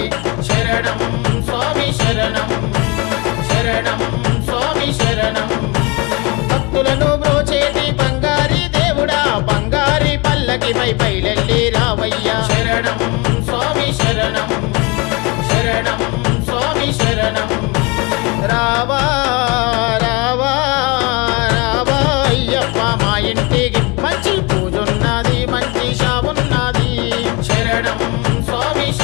శరణం స్వామి శరణం శరణం స్వామి శరణం భక్తులను బ్రోచేటి బంగారి దేవుడా బంగారి పల్లకిపై బయలెల్లి రావయ్యా శరణం స్వామి శరణం శరణం స్వామి శరణం రావా రావా రావా అయ్యప్ప మా ఇంటికి మంచి పూజున్నది మంచి షావున్నది శరణం స్వామి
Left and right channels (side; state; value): right; quieter; 27.6 dB